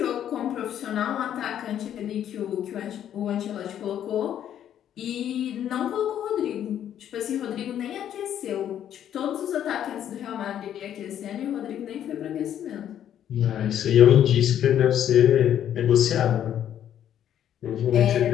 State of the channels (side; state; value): right; quieter; 10.3 dB